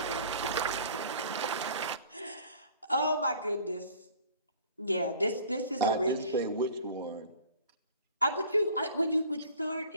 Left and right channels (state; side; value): inverted; both; correlation -0.49